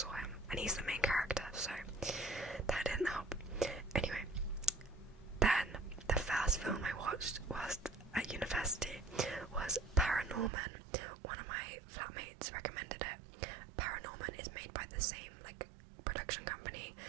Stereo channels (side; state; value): left; drops out; at 10.5 s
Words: him, and he's the main character, so that didn't help. Anyway, then the first film I watched was at university was Paranorman. One of my flatmates recommended it. Paranorman is made by the same like production company